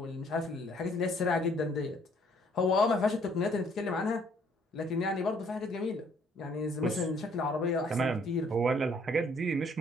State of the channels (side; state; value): both; normal; correlation 0.63